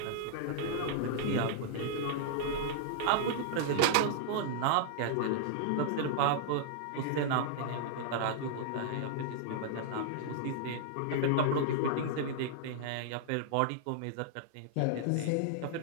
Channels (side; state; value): both; different; correlation -0.01